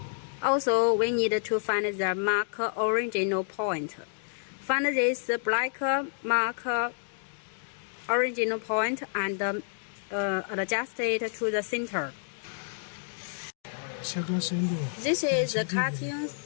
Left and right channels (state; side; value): silent; right; digital silence